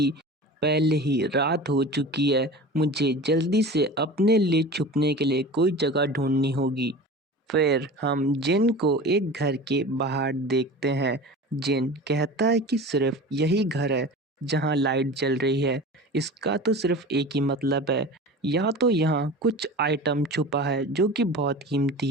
पहले ही रात हो चुकी है, मुझे जल्दी से अपने लिए छुपने के लिए कोई जगह ढूंढनी होगी। फिर हम जिन को एक घर के बाहर देखते हैं जिन कहता है कि सिर्फ यही घर है जहाँ लाइट जल रही है। इसका तो सिर्फ एक ही मतलब है, या तो यहाँ कुछ आइटम छुपा है जो कि बहुत कीमती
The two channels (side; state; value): both; normal; correlation 0.35